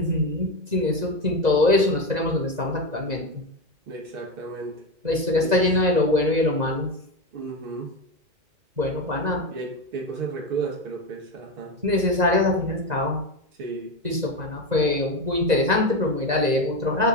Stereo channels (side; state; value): left; late; 2.0 ms